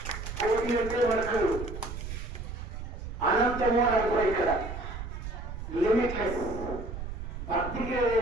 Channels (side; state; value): right; noise; rumble, 8 dB below the sound